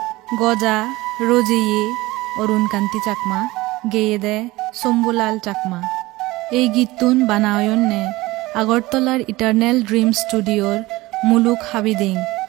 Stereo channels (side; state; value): left; quieter; 19.7 dB